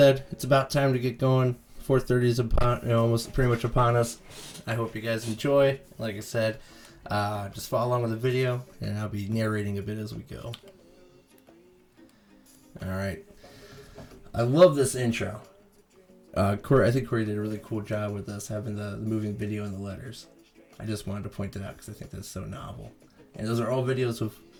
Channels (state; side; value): identical; both; correlation 1.00